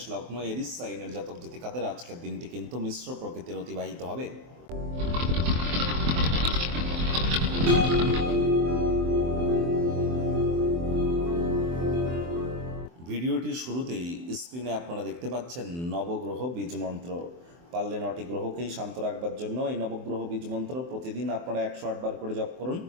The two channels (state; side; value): late; left; 23 ms